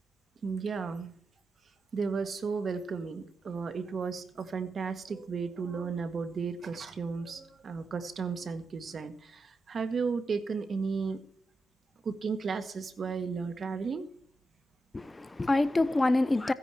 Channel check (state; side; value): normal; both; correlation 0.88